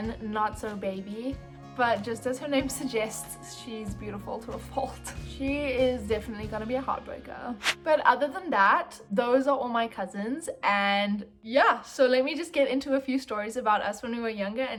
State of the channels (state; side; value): identical; both; correlation 1.00